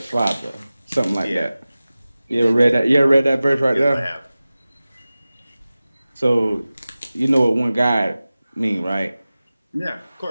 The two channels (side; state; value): both; inverted; correlation -0.97